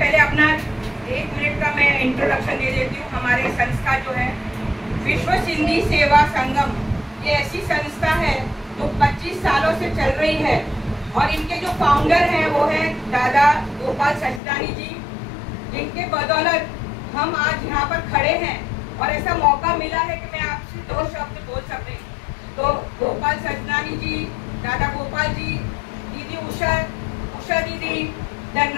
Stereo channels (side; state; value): right; drops out; at 14.4 s